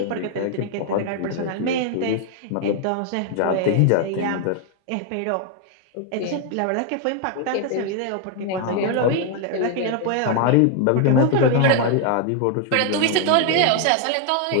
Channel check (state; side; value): different; both; correlation 0.00